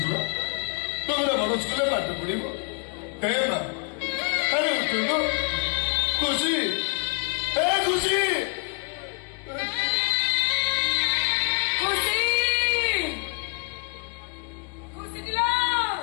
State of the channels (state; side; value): quieter; right; 35.1 dB